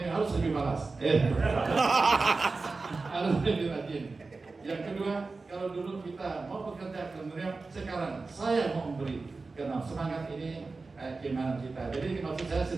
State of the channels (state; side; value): quieter; left; 3.9 dB